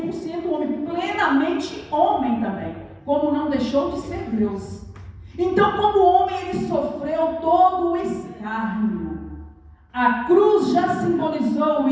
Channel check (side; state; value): both; identical; correlation 1.00